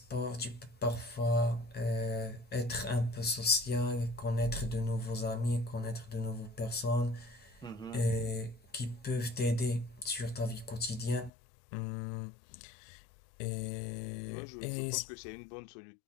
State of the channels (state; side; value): drops out; right; at 11.3 s